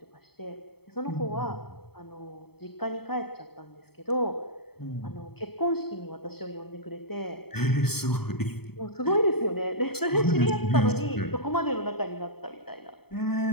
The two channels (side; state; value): right; late; 0.96 ms